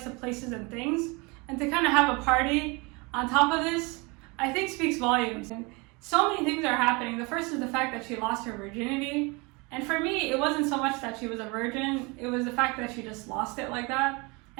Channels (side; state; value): left; quieter; 27.6 dB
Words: to places and things. And to kind of have a party on top of this, I think speaks volumes. And so many things are happening. The first is the fact that she lost her virginity. And for me, it wasn't so much that she was a virgin, it was the fact that she just lost it like that.